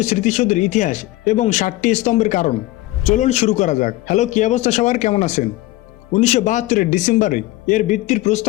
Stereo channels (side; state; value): right; quieter; 18.3 dB